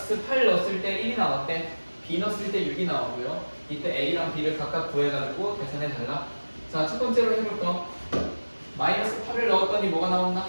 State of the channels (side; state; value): both; inverted; correlation -1.00